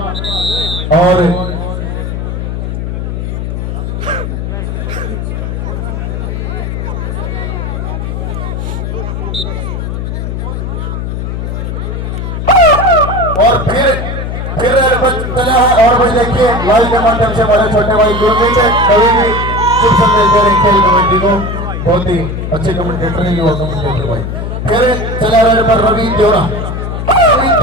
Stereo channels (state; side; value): noise; left; hum, 4 dB below the sound